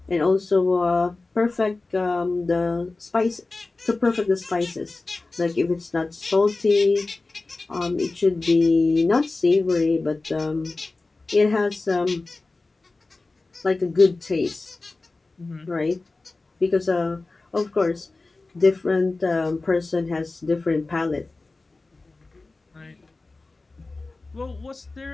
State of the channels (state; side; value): quieter; right; 3.4 dB